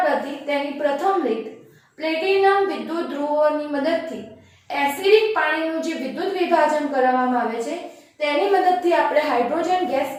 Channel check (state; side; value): identical; both; correlation 1.00